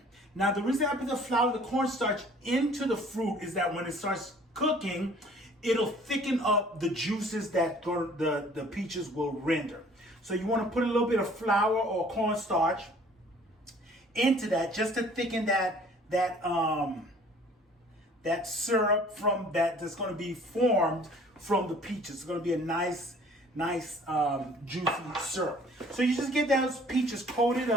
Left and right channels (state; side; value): normal; both; correlation 0.53